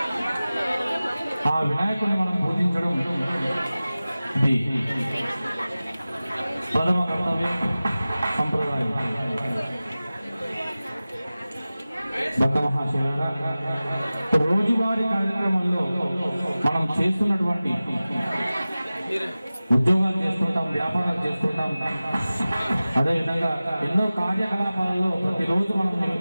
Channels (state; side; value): inverted; both; correlation -0.96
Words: ఆ వినాయకుడిని మనం పూజించడం ఇది ప్రథమ కర్తవ్యం, సంప్రదాయం. భక్త మహాశయులారా, రోజువారీ కార్యక్రమంలో మనం చేస్తున్నటువంటి ఉద్యోగాలు చేస్తుంటాం, వ్యాపారాలు చేస్తుంటాం, అదేవిధంగా ఎన్నో కార్యకలాపాలలో ప్రతిరోజు మనం